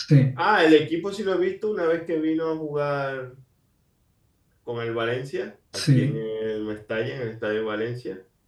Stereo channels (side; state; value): both; identical; correlation 1.00